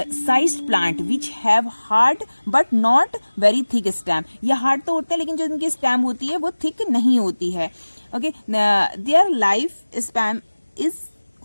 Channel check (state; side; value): inverted; both; correlation -1.00